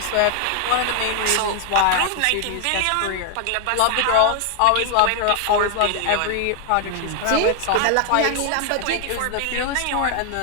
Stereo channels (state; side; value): different; both; correlation 0.00